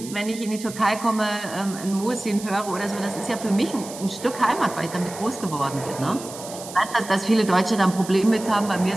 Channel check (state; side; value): noise; right; hiss, 13 dB below the sound